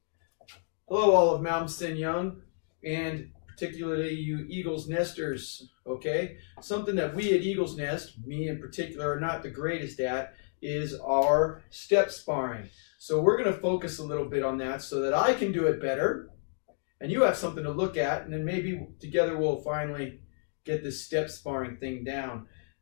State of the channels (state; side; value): silent; right; digital silence